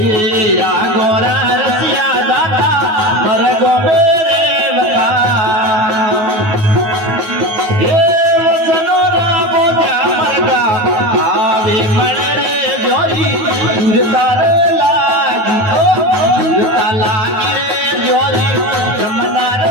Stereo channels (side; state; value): left; late; 9.4 ms